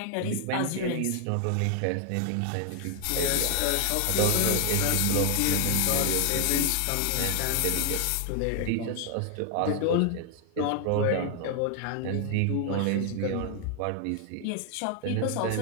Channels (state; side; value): different; both; correlation 0.00